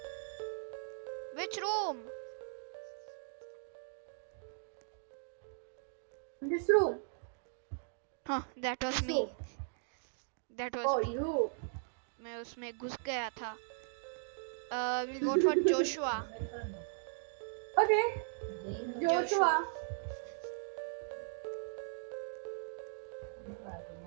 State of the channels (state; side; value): silent; left; digital silence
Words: Which room? In this room. Huh, that was This me. room. That was Oh, me. you. मैं उसमें घुस गया था. We'll vote for Joshua. Okay. Joshua.